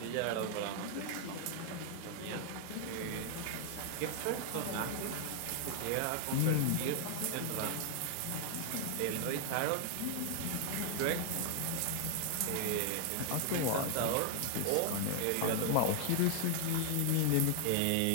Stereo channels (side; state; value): both; different; correlation 0.00